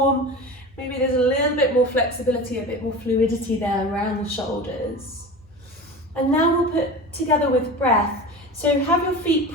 maybe there's a little bit more flexibility, a bit more fluidity there around the shoulders. And now we'll put together with breath. So have your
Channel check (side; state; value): both; normal; correlation 0.31